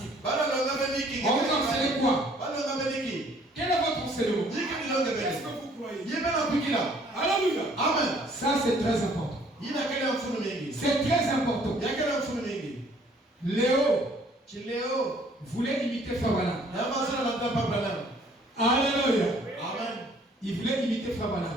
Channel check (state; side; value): normal; both; correlation 0.59